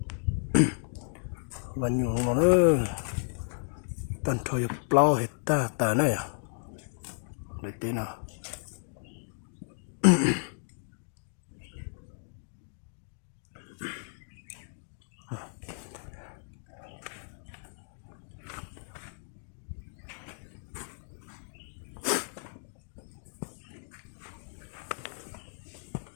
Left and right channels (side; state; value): right; silent; digital silence